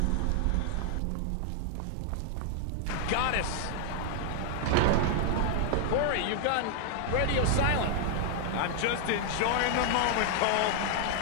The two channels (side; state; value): both; different; correlation 0.00